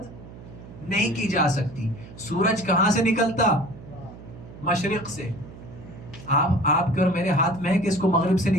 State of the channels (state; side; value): noise; right; hum, 16 dB below the sound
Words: نہیں کی جا سکتی. سورج کہاں سے نکلتا؟ مشرق سے. آپ کے اور میرے ہاتھ میں ہے کہ اس کو مغرب سے